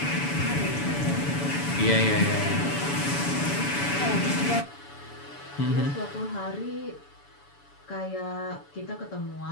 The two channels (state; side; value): late; right; 7.0 ms